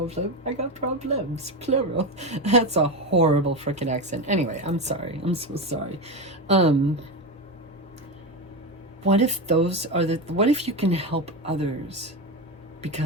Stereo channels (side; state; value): both; normal; correlation 0.17